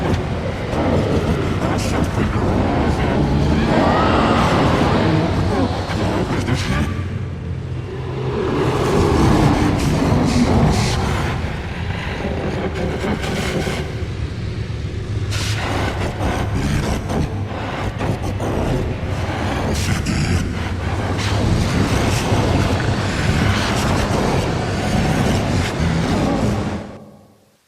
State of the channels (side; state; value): both; identical; correlation 1.00